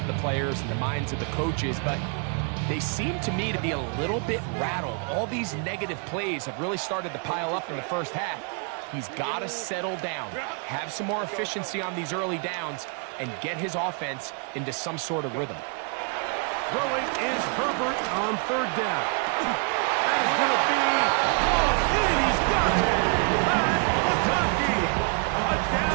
the players and the minds of the coaches, but they seem to me to be a little bit rattled. All these negative plays have really started to pile up in the first half. He's got to settle down, have some more efficiency on these early downs, and get his offense into some sort of rhythm. Throwing is Herbert on third down. That is going to be hauled in. He's got it.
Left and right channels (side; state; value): left; quieter; 38.5 dB